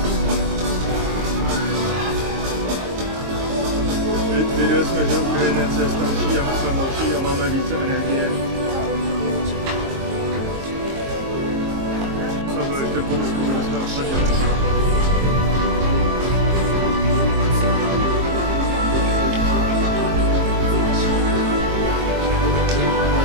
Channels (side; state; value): left; late; 22 ms